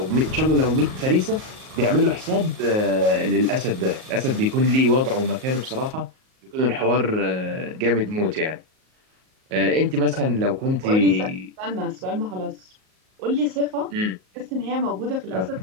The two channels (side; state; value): left; late; 38 ms